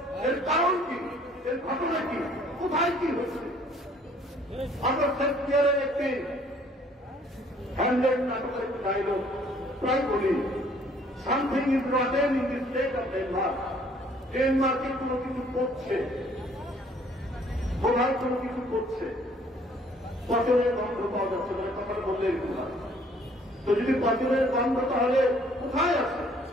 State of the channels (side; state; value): both; normal; correlation 0.59